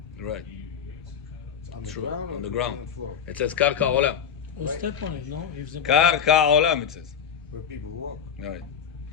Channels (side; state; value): right; quieter; 7.9 dB